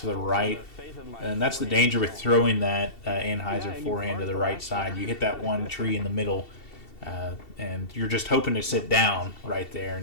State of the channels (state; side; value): late; right; 2.7 ms